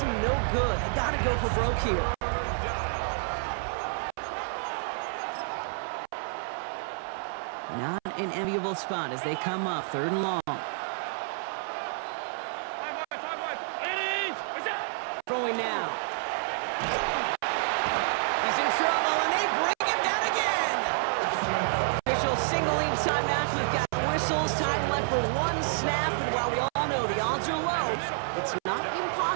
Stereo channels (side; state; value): left; silent; 59 dB below the other